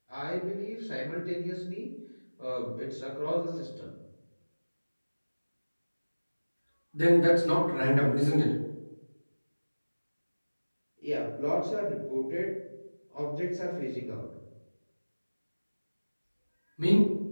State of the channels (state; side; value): inverted; both; correlation -1.00